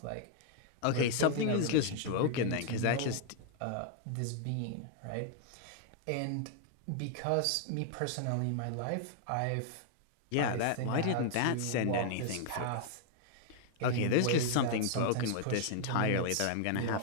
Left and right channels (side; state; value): both; different; correlation -0.01